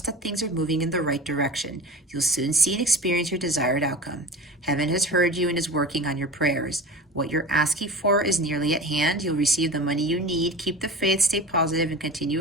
that things are moving in the right direction. You'll soon see and experience your desired outcome. Heaven has heard you and is working on your prayers. What you're asking for is nearly at hand. You'll receive the money you need. Keep the faith, stay positive, and continue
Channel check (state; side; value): normal; both; correlation 0.33